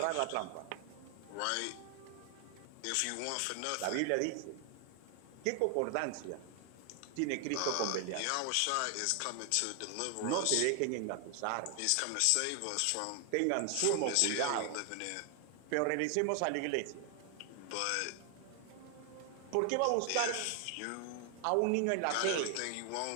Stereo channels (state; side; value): different; both; correlation 0.00